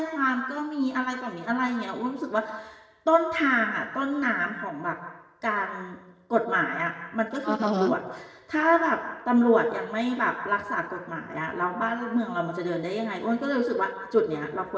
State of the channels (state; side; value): identical; both; correlation 1.00